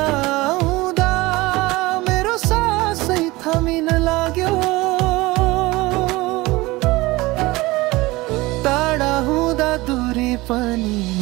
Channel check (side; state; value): left; quieter; 20.9 dB